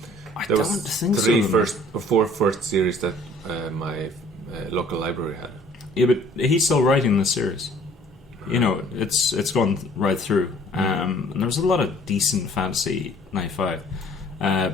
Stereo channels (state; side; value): normal; both; correlation 0.54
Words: I There don't was think three so. four first series that my local library had. Yeah, but he's still writing the series. You know, it's gone right through. And there was a lot of decent fantasy 95.